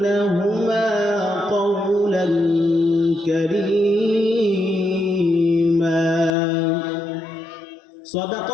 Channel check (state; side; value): drops out; right; at 6.3 s